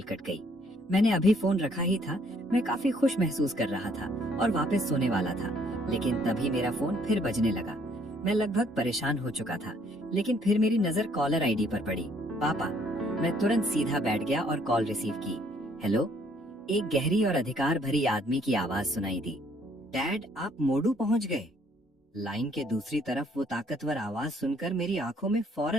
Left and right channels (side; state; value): both; normal; correlation 0.64